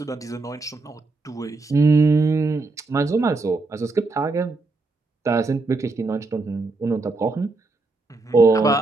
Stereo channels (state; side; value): quieter; left; 3.5 dB